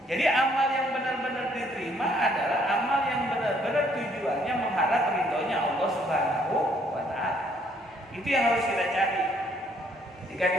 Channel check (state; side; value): normal; both; correlation 0.66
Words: Jadi amal yang benar-benar diterima adalah amal yang benar-benar tujuannya mengharap ridhonya Allah Subhanahu wa taala. Itu yang harus kita cari. Jika